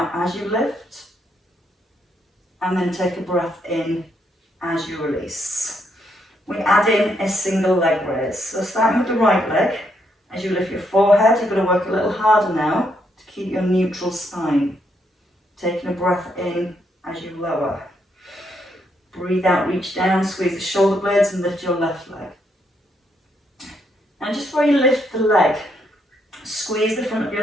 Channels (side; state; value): both; normal; correlation 0.76